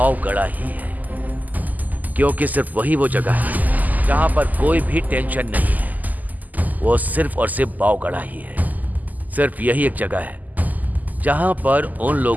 ही है, क्योंकि सिर्फ वही वो जगह है जहां पर कोई भी टेंशन नहीं है। वो सिर्फ और सिर्फ बावगढ़ा ही है। सिर्फ यही एक जगह है जहां पर उन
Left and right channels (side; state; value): left; late; 0.081 ms